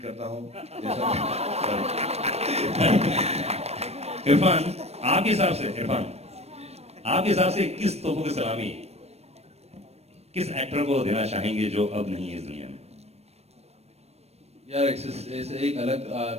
करता हूँ जैसा. इरफान, आपके हिसाब से किस तोपों की सलामी किस एक्टर को देना चाहेंगे जो अब नहीं है इस दुनिया में? यार ऐसे एक अलग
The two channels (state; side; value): late; left; 0.31 ms